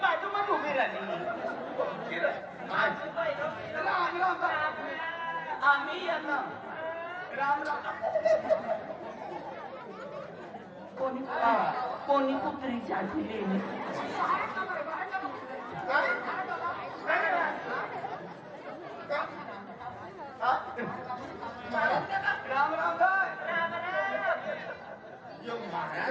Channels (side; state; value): both; identical; correlation 1.00